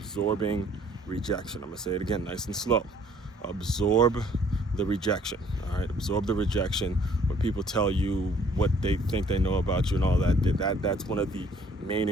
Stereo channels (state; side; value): normal; both; correlation 0.59